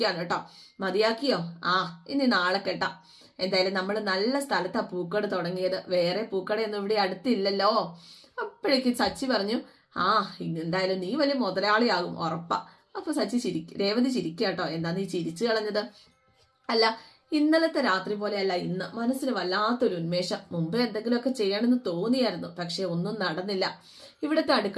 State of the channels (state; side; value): identical; both; correlation 1.00